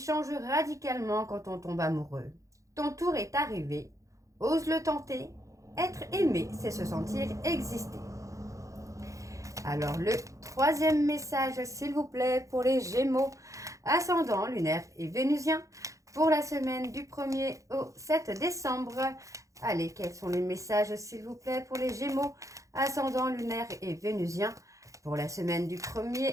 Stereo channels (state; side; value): late; left; 0.15 ms